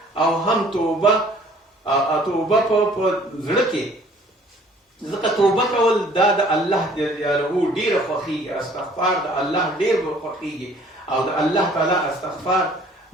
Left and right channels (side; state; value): both; normal; correlation 0.55